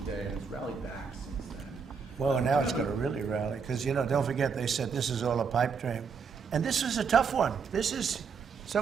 Day, and it's rallied back since then. Well, now it's going to really rally, because, you know, don't forget, they said this is all a pipe dream. And this is a tough one. This is,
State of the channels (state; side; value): quieter; left; 5.9 dB